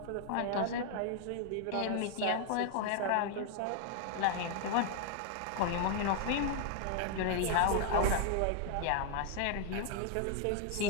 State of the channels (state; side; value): different; both; correlation 0.00